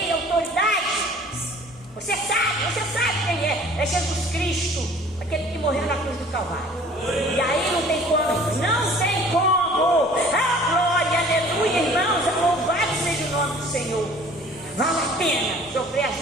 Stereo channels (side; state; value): both; normal; correlation 0.50